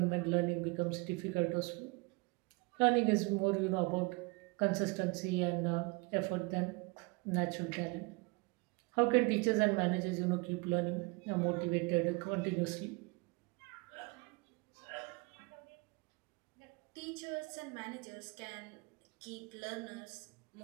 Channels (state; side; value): quieter; left; 28.1 dB